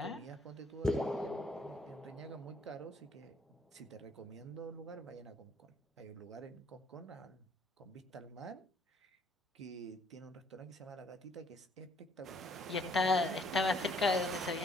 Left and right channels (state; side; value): normal; both; correlation 0.65